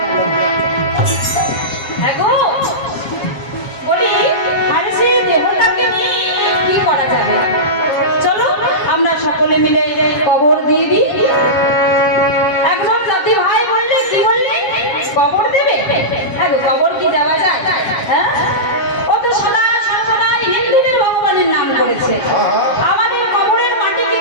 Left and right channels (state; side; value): late; right; 7.4 ms